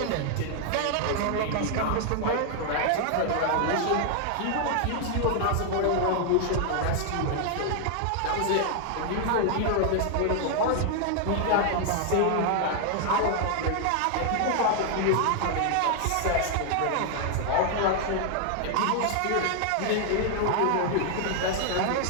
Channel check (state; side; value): different; both; correlation 0.00